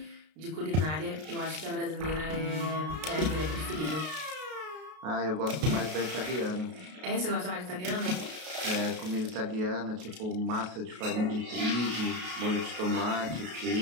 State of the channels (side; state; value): left; late; 33 ms